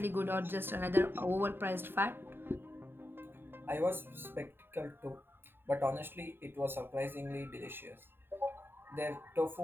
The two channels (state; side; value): late; left; 0.10 ms